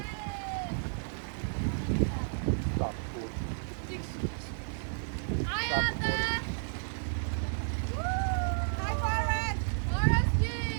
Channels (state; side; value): silent; left; digital silence